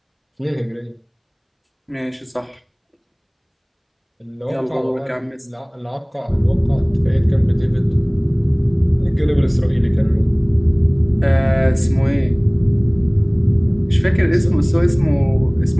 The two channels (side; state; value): both; identical; correlation 1.00